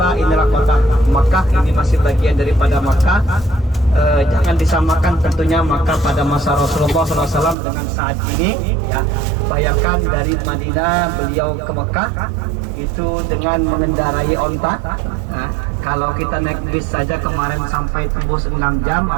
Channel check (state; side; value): drops out; left; at 7.6 s